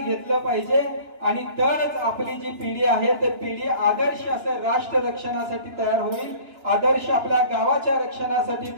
पाहिजे. आणि तरच आपली जी पिढी आहे ती पिढी आदर्श असं राष्ट्र रक्षणासाठी तयार होईल, आदर्श आपल्या गावाच्या रक्षणासाठी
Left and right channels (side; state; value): left; late; 2.9 ms